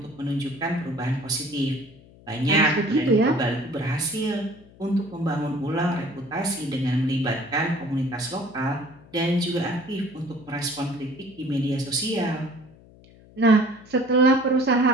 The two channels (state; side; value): noise; left; hum, 24 dB below the sound